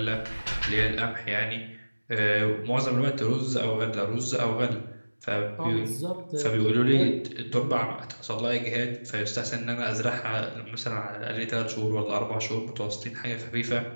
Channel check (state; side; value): inverted; both; correlation -1.00